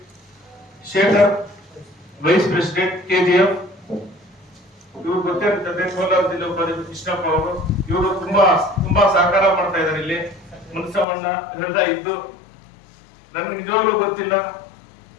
Shekhar vice president KGF, ಇವರು ಗೊತ್ತಿರ್ತದೆ. ಕೋಲಾರ ಜಿಲ್ಲಾ ಉಪಾಧ್ಯಕ್ಷ ಕೃಷ್ಣಪ್ಪ ಅವರು, ಇವರು ತುಂಬಾ ಸಹಕಾರ ಮಾಡ್ತಾ ಇದ್ದಾರೆ. ಇಲ್ಲಿ ಮುನಿಸ್ವಾಮಣ್ಣ ಹೃದಯ ಇದ್ದು ನನಗೆ ನಿಜವಾಗ್ಲೂ ಗೊತ್ತಿಲ್ಲ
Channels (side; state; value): right; drops out; at 11.1 s